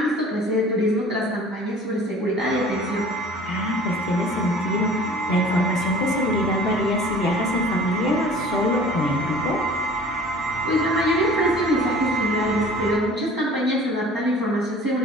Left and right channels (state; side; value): normal; both; correlation 0.46